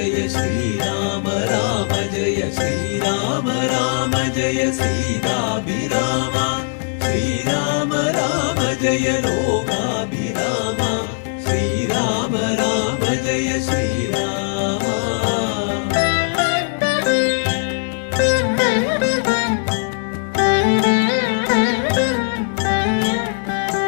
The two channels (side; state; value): right; silent; digital silence